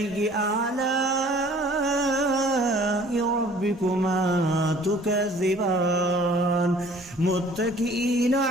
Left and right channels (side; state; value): both; normal; correlation 0.52